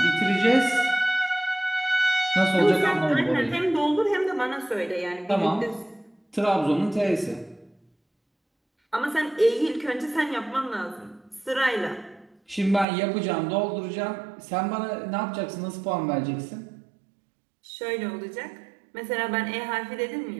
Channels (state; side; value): drops out; left; at 12.9 s